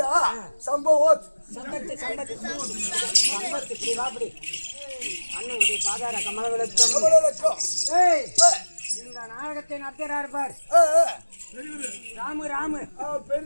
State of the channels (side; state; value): both; inverted; correlation -1.00